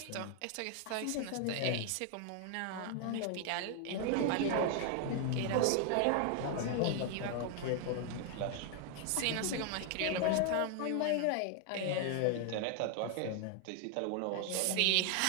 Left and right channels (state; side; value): different; both; correlation 0.00